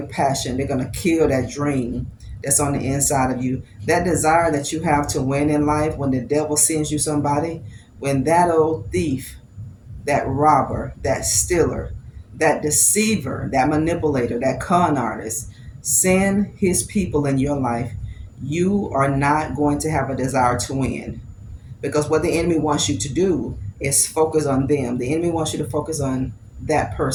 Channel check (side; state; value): both; identical; correlation 1.00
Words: passion. They're going to kill that dream that's on the inside of you. That desire that you have to win in life when the devil sends you somebody, when that old thief, that robber, that stealer, that deceiver, that manipulator, that con artist send his people in your life, you are not going to have a desire to win. Because what the enemy wants you to do is focus on them. The enemy wants you to focus on that